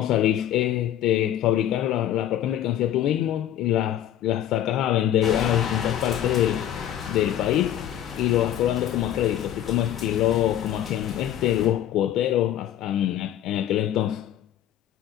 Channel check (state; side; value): quieter; right; 11.4 dB